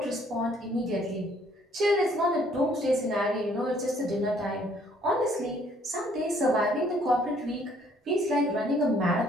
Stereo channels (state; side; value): normal; both; correlation 0.63